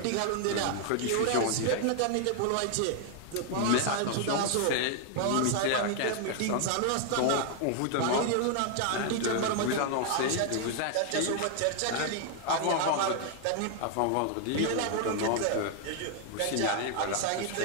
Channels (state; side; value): different; both; correlation 0.00